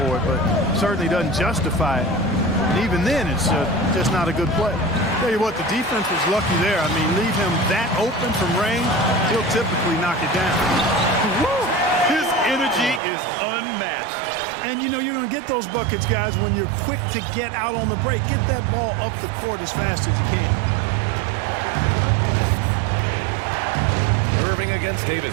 it, but certainly doesn't justify it. And even then, it's just not a good play. Tell you what, the defense was lucky there. I mean, leave him that open from range, he'll typically knock it down. Woo! His energy is unmatched. And you know you're going to get those buckets, guys, when you're quick to get out on the break. Get that ball up the court as fast as you can. Irving against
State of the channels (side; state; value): left; drops out; at 13.0 s